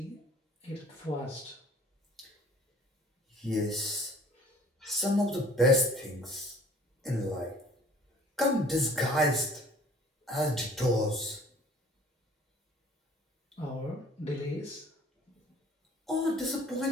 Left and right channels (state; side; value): normal; both; correlation 0.52